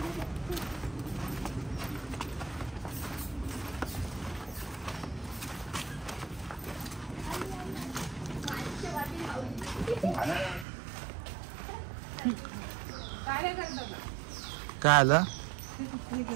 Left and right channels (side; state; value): left; drops out; at 10.7 s